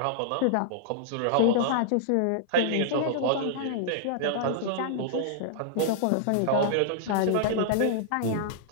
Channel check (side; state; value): both; different; correlation -0.01